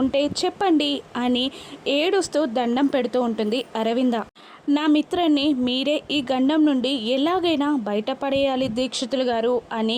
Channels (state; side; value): identical; both; correlation 1.00